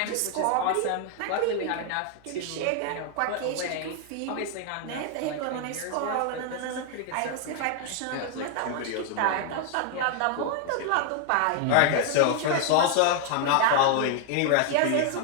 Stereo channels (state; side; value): different; both; correlation 0.00